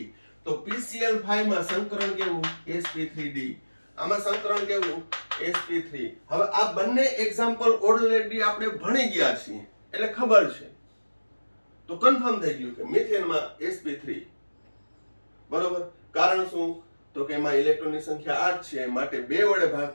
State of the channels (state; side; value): inverted; both; correlation -1.00